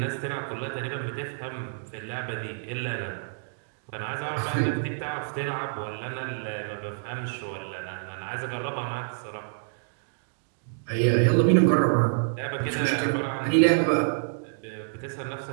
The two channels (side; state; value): left; silent; digital silence